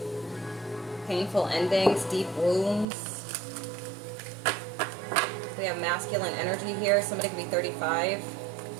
painful endings, deep wounds. We have masculine energy here. Somebody could be 35.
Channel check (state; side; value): drops out; left; at 2.9 s